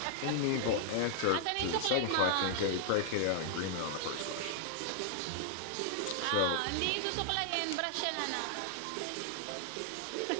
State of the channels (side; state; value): both; different; correlation -0.01